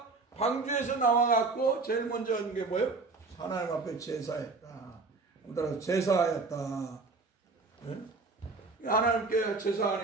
방주에서 나와갖고 제일 먼저 한 게 뭐예요? 하나님 앞에 제사했다. 따라서 제사하였다. 하나님께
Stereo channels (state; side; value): quieter; left; 3.9 dB